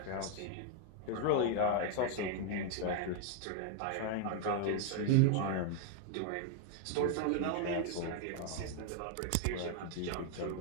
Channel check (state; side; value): different; both; correlation 0.00